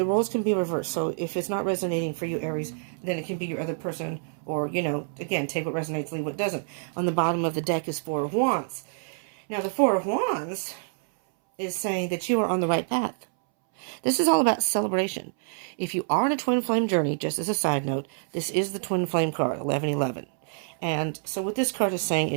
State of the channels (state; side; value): silent; left; 60 dB below the other